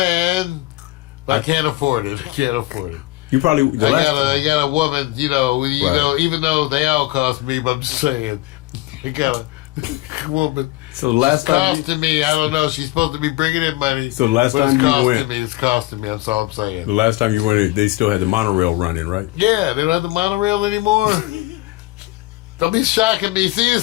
but I can't afford it. I can't afford it. You probably. I got a woman. You know. You know. Even though they all cost me, but I'm just saying, I got a woman. So the last It's time, costing me. I don't know. She's supposed to be bringing in money. So last but time it's you costing went- me. It's costing me. That's all I'm saying. the last time you went, they still had the monorail running, right? Yeah, they don't have the monorail anymore. Don't be shocking me. See,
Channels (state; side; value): quieter; right; 19.1 dB